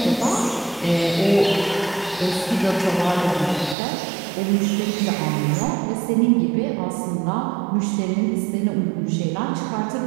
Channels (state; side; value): drops out; left; at 3.8 s